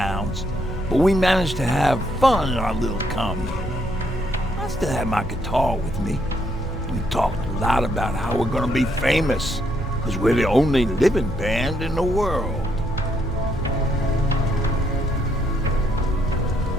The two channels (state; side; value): normal; both; correlation 0.73